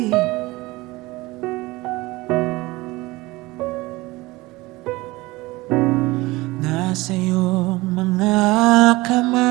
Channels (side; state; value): left; quieter; 20.9 dB